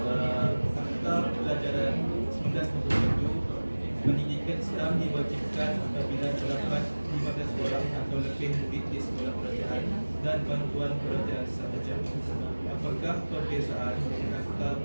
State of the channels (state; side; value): inverted; both; correlation -1.00